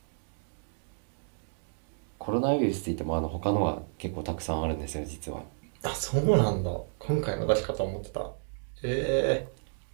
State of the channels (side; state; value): left; silent; digital silence